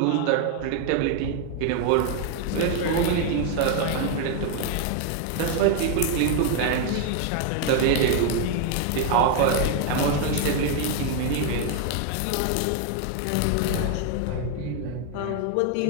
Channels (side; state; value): both; different; correlation 0.00